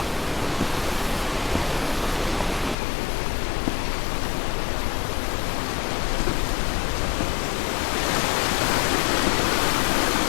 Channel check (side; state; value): right; drops out; at 2.8 s